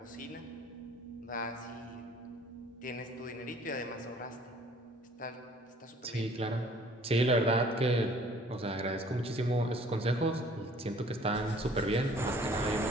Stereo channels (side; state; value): both; normal; correlation 0.55